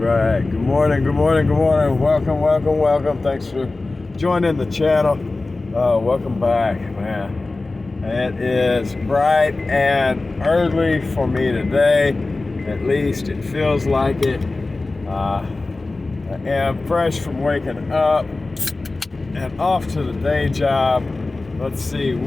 Right. Good morning. Welcome. Thanks for joining the channel. Welcome back, man. It is bright and early for me today. At least it feels like it. I am fresh from waking up and off to the day job. Let's see,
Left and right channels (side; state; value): right; quieter; 3.3 dB